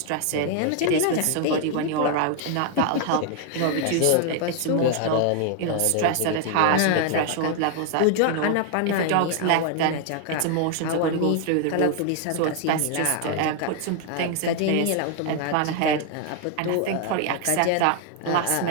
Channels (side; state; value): both; different; correlation 0.00